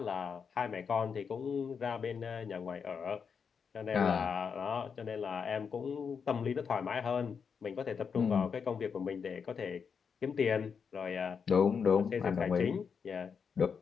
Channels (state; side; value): quieter; right; 6.3 dB